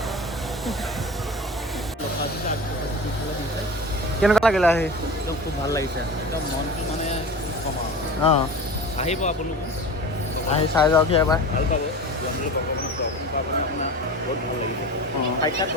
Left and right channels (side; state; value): both; normal; correlation 0.33